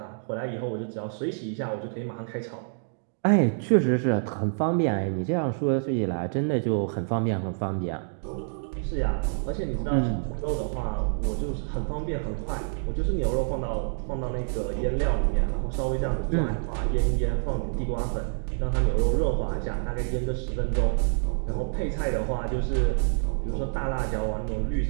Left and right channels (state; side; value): silent; left; digital silence